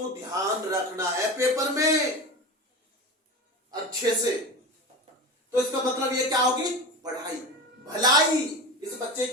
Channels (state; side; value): normal; both; correlation 0.27